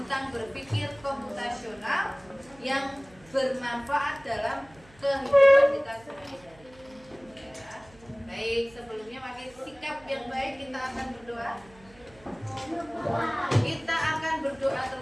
berpikir komputasional yang bermanfaat dalam kehidupan kita sehari-hari. Ya. Baik, sebelumnya pakai sikap yang baik kita akan berdoa. Kita akan berdoa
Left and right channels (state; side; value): noise; right; hum, 26 dB below the sound